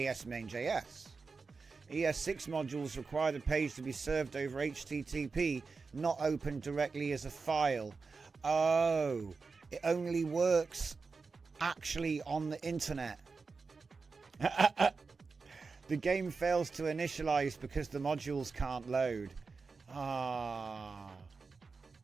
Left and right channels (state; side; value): quieter; left; 4.5 dB